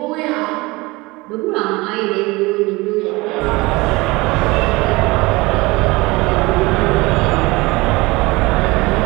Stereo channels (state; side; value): quieter; left; 22.7 dB